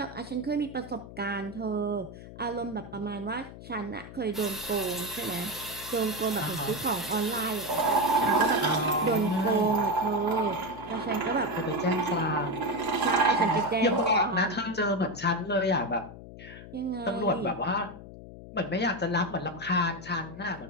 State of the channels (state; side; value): noise; left; hum, 15 dB below the sound